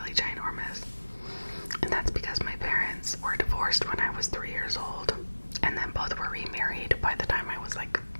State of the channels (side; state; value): both; inverted; correlation -1.00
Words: ginormous. And that's because my parents were divorced when I was 3 years old. And then both were remarried by the time I was like